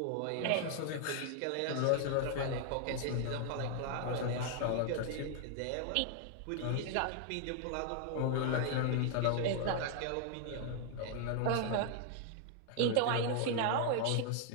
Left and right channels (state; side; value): different; both; correlation 0.00